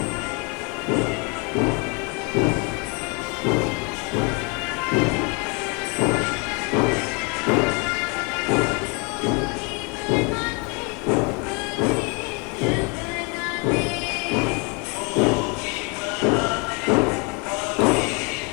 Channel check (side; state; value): right; quieter; 32.3 dB